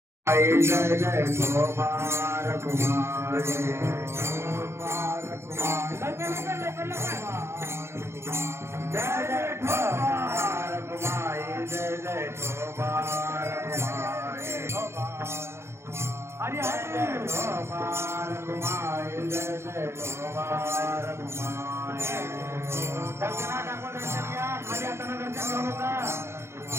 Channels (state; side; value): late; left; 0.12 ms